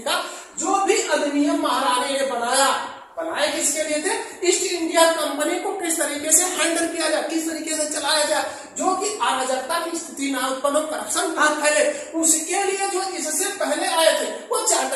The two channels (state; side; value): identical; both; correlation 1.00